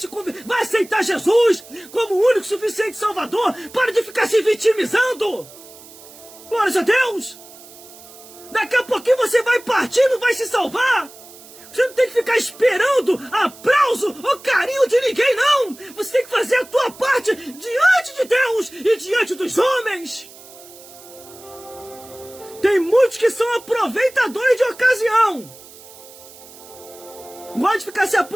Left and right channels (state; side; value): noise; right; hiss, 20 dB below the sound